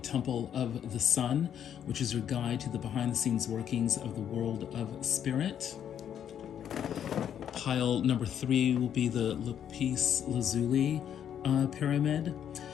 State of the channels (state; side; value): quieter; right; 9.3 dB